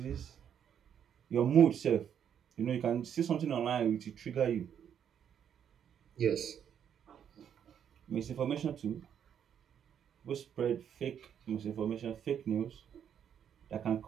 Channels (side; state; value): left; quieter; 8.7 dB